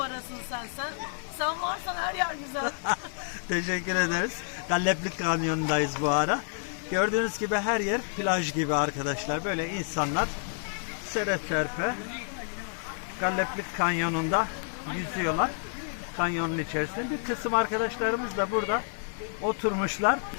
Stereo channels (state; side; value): silent; right; 58 dB below the other